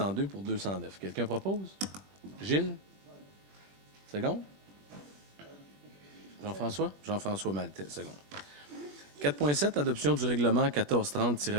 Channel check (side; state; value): left; late; 21 ms